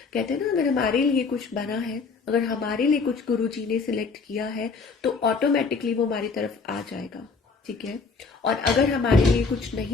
कहते हैं ना, अगर हमारे लिए कुछ बना है, अगर हमारे लिए कुछ गुरु जी ने सिलेक्ट किया है तो ऑटोमेटिकली वो हमारी तरफ आ जाएगा, ठीक है। और अगर हमारे लिए कुछ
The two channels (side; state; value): right; quieter; 4.7 dB